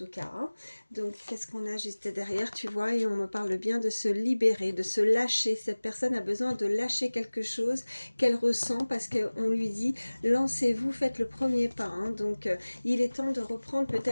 cas. Hein. Donc qu'est-ce qu'on a juste derrière, tu vois, et on me parle bien de se libérer, de se lâcher. Cette personne a besoin de lâcher quelque chose qu'elle ressent parce qu'on lui dit lancez-vous, faites le premier pas. Hein. Donc il est temps de reprendre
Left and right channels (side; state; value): both; inverted; correlation -1.00